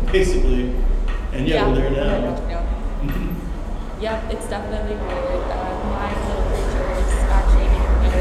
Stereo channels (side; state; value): both; identical; correlation 1.00